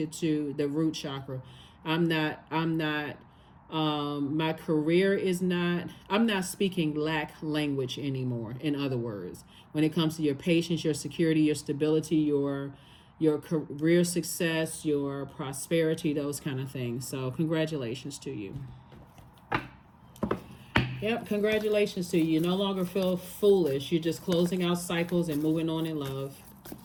to the root chakra. I'm not my career is not, I'm not speaking lack language anymore. In other words, when it comes to your patience, your security, your stability, your career success, your prosperity, those kind of things. So congratulations to you. Yep, congratulations to you. You no longer feel foolish. You're just closing out cycles and moving on in love.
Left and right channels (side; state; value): both; identical; correlation 1.00